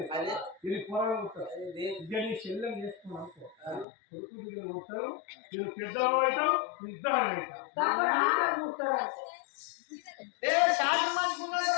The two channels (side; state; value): right; drops out; at 3.9 s